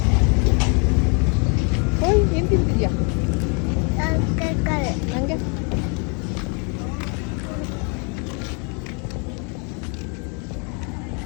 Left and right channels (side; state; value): right; quieter; 35.9 dB